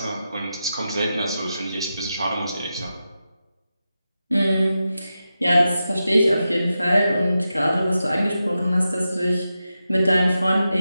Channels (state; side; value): inverted; both; correlation -0.90